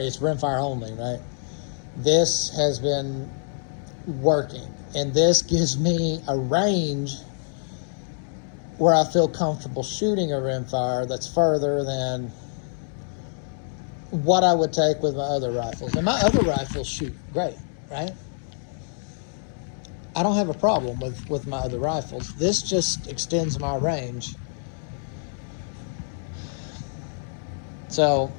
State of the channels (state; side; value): silent; right; digital silence